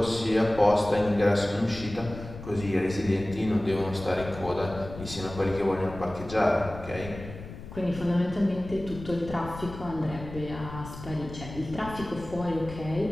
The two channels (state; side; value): noise; left; rumble, 12 dB below the sound